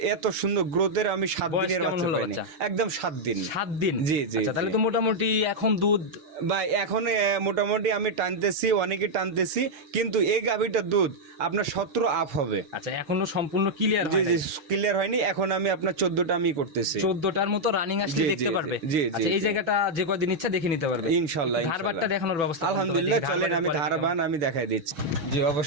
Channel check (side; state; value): left; late; 6.4 ms